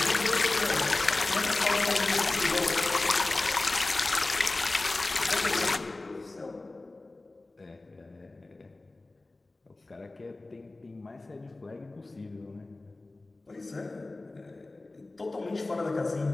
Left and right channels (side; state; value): right; quieter; 3.1 dB